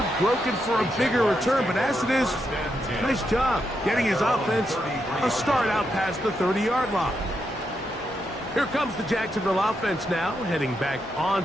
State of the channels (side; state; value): both; normal; correlation 0.82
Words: broken for a bigger return, but as it is, nice job getting his offense a start out past the 30-yard line. Here comes the Jacksonville offense now, heading back